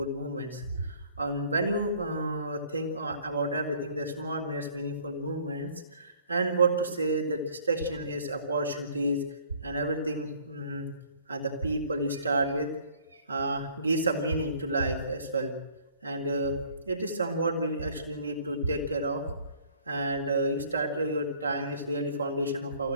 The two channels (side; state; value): both; inverted; correlation -0.56